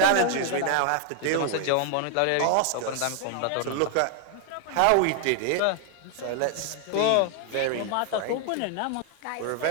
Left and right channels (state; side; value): different; both; correlation 0.00